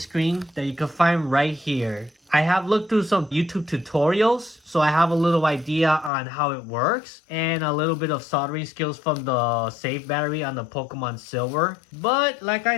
that you can find right here. I have looked through some YouTube tutorials, so I have a little idea on how it works and a little bit of soldering skills from the save battery on the Pokemon Silver. But like I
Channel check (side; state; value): right; drops out; at 6.1 s